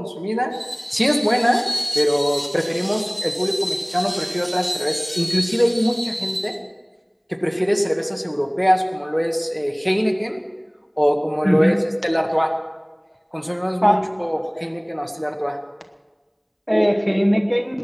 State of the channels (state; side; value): identical; both; correlation 1.00